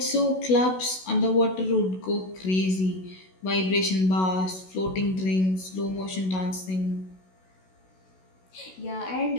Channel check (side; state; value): right; late; 16 ms